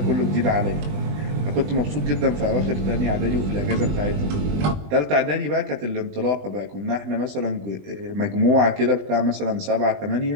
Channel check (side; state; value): left; late; 20 ms